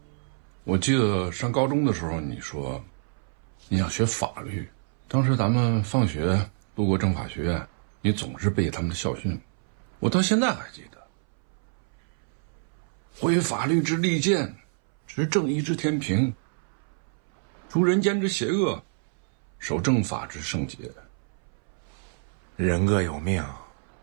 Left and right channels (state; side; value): silent; left; 60 dB below the other